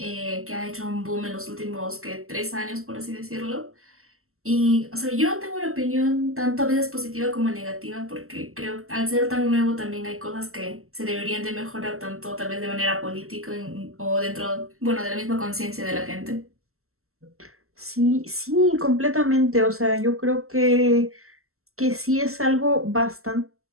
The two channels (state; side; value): late; left; 0.63 ms